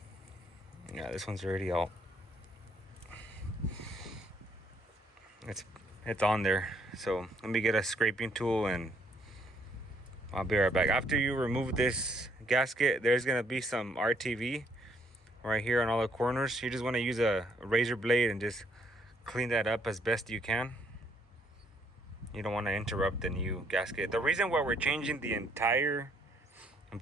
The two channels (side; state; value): both; normal; correlation 0.69